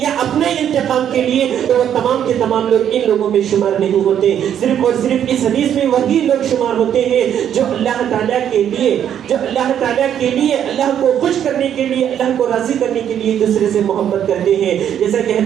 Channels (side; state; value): left; quieter; 9.6 dB